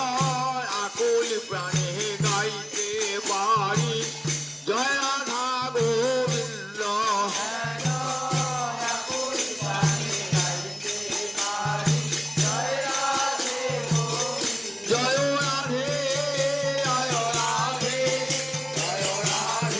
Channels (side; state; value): both; identical; correlation 1.00